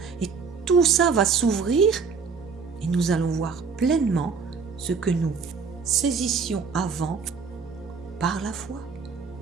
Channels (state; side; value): quieter; left; 5.3 dB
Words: Et tout ça va s'ouvrir et nous allons voir pleinement ce que nous saisissions avant par la foi.